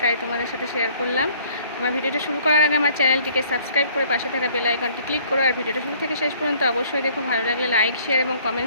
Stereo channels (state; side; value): inverted; both; correlation -0.58